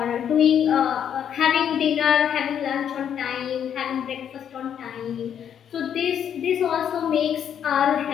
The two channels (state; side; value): quieter; right; 8.9 dB